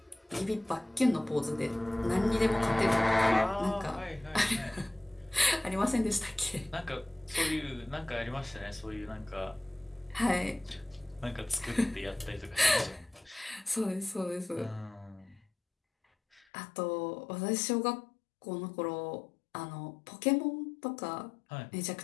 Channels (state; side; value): drops out; right; at 16.4 s